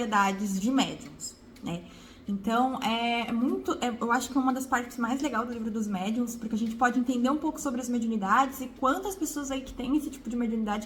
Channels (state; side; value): identical; both; correlation 1.00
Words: de médiuns, né? Então, eu acho que é uma das partes mais legais do Livro dos Médiuns, porque a gente pode entender um pouco sobre as mediunidades e quantas pessoas aí que têm esse tipo de